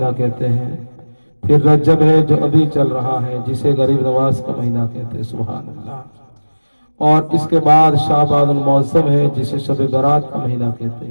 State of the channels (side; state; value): both; inverted; correlation -1.00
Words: کہتے ہیں، پھر رجب ہے جو ابھی چل رہا ہے جسے غریب نواز کا مہینہ کہتے ہیں، سبحان اللہ، اور اس کے بعد شعبان المعظم ہے جسے شب برات کا مہینہ کہتے